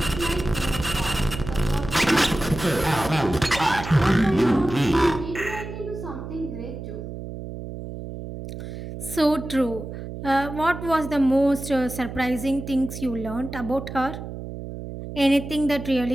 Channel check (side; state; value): right; noise; hum, 9 dB below the sound